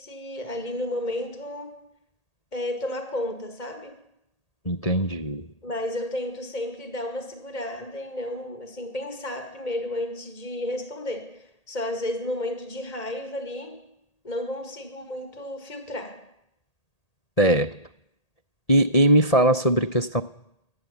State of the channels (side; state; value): right; late; 1.8 ms